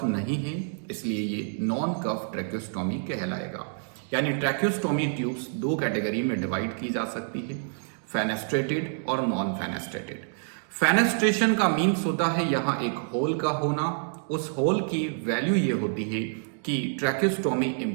नहीं है, इसलिए ये नॉन कफ ट्रैक्योस्टोमी कहलाएगा। यानी ट्रैक्योस्टोमी ट्यूब्स दो कैटेगरी में डिवाइड की जा सकती है, फेनेस्ट्रेटेड और नॉन फेनेस्ट्रेटेड। फेनेस्ट्रेशन का मीन्स होता है यहाँ एक होल का होना। उस होल की वैल्यू ये होती है कि ट्रैक्योस्टोमी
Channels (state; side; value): silent; left; digital silence